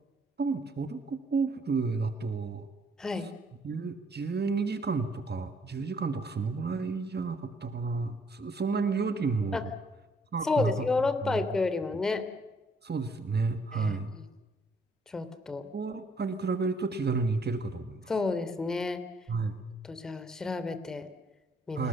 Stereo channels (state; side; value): normal; both; correlation 0.67